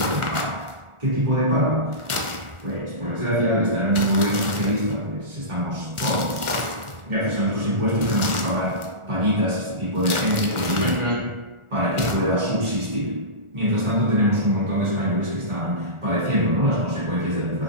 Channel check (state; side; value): late; left; 1.4 ms